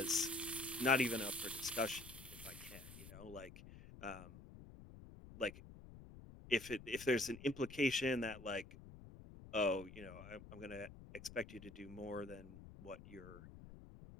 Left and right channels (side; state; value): left; noise; rumble, 15 dB below the sound